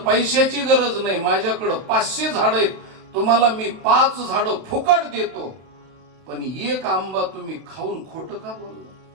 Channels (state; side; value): late; left; 31 ms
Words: पैशाची गरज नाही, माझ्याकडे 500 झाड आहेत, तुम्हाला मी 5 झाडं फुकट देतो, पण 1 आंबा तुम्ही खाऊन खोटं का बोलला?